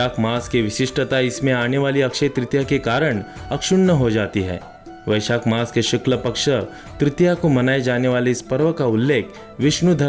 मास की विशिष्टता इसमें आने वाली अक्षय तृतीया के कारण अक्षुण्ण हो जाती है। वैशाख मास के शुक्ल पक्ष तृतीया को मनाए जाने वाले इस पर्व का उल्लेख विष्णु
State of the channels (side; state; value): both; identical; correlation 1.00